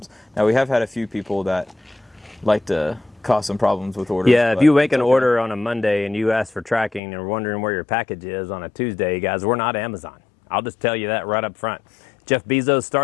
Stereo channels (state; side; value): drops out; right; at 7.0 s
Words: Now, we have had a few people that like to cause some problems with orders. Yeah, if but you make it's an okay. order on a Monday and you ask for tracking and are wondering where your package is on a Tuesday, guys, we're not Amazon. I'll just tell you that right up front. Jeff Bezos